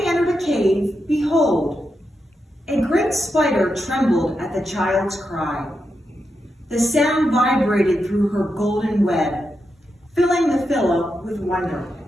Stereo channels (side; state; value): both; normal; correlation 0.86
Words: entered a cave, behold, a great spider trembled at the child's cry. The sound vibrated through her golden web, filling the pillow with wonder.